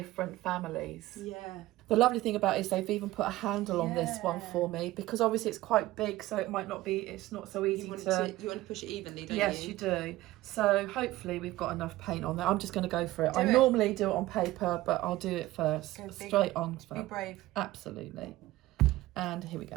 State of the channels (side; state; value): left; quieter; 17.1 dB